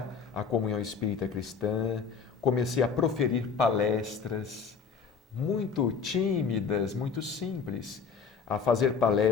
a Comunhão Espírita Cristã, comecei a proferir palestras muito tímidas, muito simples, a fazer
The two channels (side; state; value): right; quieter; 5.8 dB